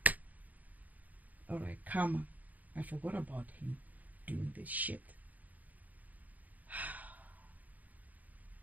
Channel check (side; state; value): left; late; 0.079 ms